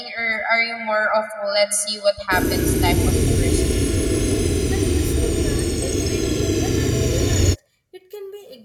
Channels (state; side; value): identical; both; correlation 1.00